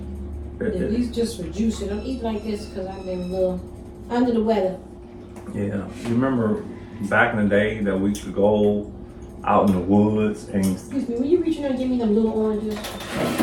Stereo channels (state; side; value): identical; both; correlation 1.00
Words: At least just for juice. I don't eat like this because I've been a little under the weather. Yeah, you remember back in the day that we could go out in the woods and. Excuse me, will you reach in there and give me them little oranges?